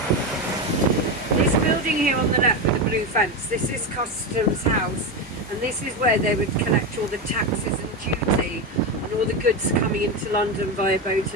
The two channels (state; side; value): normal; both; correlation 0.15